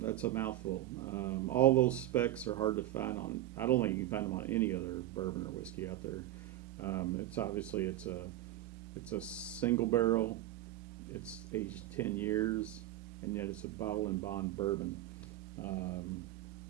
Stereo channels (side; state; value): left; quieter; 14.4 dB